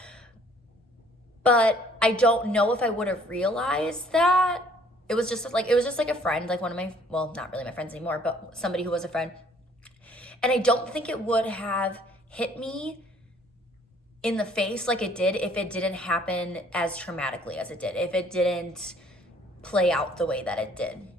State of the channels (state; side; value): normal; both; correlation 0.59